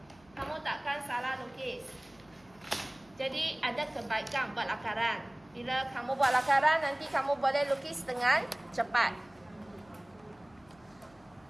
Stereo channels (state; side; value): noise; left; hum, 28 dB below the sound